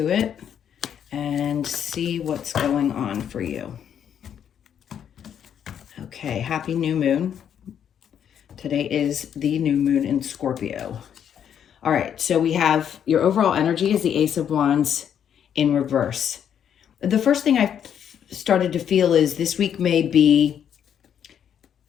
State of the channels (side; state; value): right; quieter; 8.9 dB